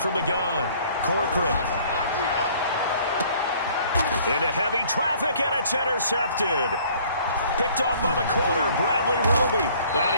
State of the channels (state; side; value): inverted; both; correlation -0.56